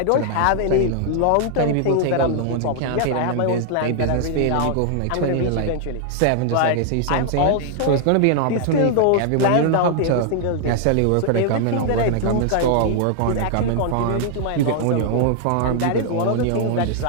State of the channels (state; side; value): different; both; correlation 0.00